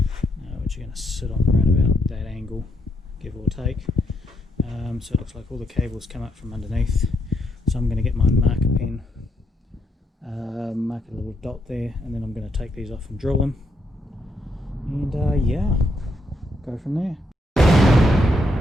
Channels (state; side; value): normal; both; correlation 0.77